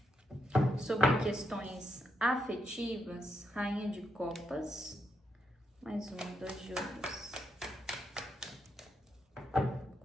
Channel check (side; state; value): both; normal; correlation 0.81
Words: sobre questões afetivas, rainha de copas, mais 2 de ouros.